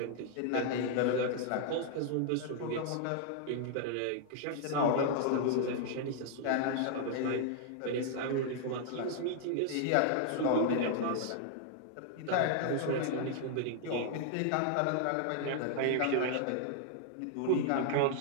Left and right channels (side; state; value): both; different; correlation -0.01